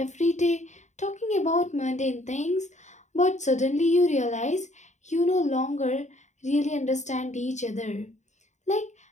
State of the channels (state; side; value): late; right; 0.34 ms